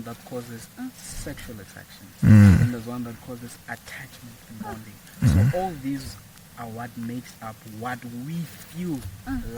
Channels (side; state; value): both; identical; correlation 1.00